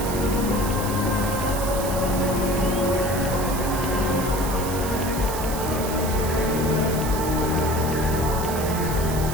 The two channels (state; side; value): noise; right; hiss, 9 dB below the sound